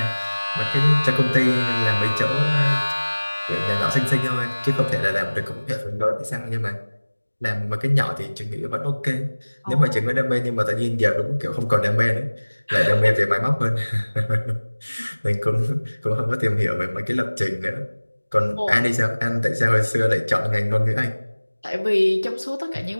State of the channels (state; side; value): inverted; both; correlation -1.00